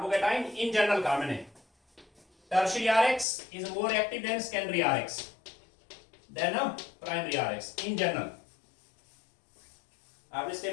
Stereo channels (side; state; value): right; drops out; at 3.2 s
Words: in general carbon है। Tertiary RX is more active than secondary RX than a primary RX in general। आपने